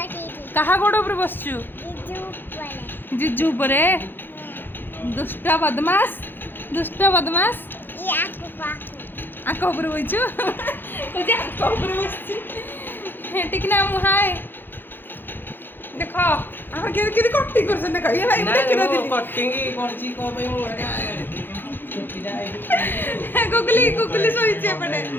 कहा गोड़ ऊपर बसचु जिजू परे दुष्ट बदमाश आंख ऊपर बइचु तुझे आंख ऊपर बसची ठीक ना मुहाय देखो हम के कटिंग करछन देखो ये भाई देख ना दिली कटिंग करची को पे मु छुट्टी जाए गुगली सोइचे पड़े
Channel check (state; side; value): late; right; 0.098 ms